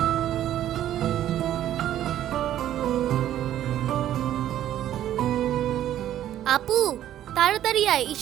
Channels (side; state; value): left; quieter; 11.9 dB